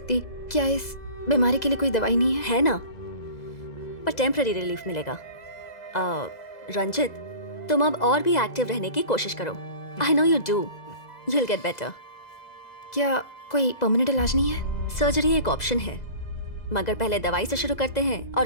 क्या इस बीमारी के लिए कोई दवाई नहीं है? है ना, पर टेम्पररी रिलीफ मिलेगा। रंजित, तुम अब और भी एक्टिव रहने की कोशिश करो। I know you do, you will get better. क्या कोई परमानेंट इलाज नहीं है? सर्जरी एक ऑप्शन है, मगर पहले दवाई से शुरू करते हैं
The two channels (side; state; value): right; late; 2.0 ms